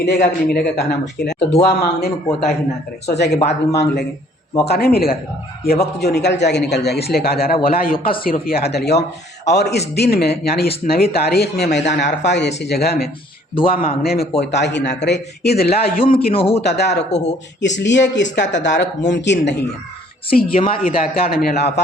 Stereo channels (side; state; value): both; normal; correlation 0.59